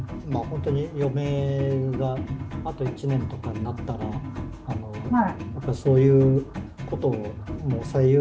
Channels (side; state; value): both; identical; correlation 1.00